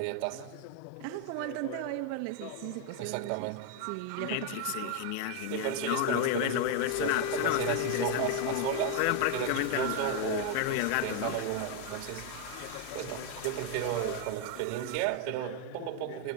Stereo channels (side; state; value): both; different; correlation 0.01